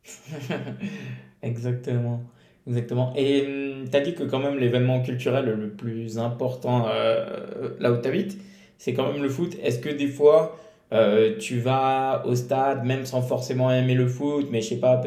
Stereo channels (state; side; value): identical; both; correlation 1.00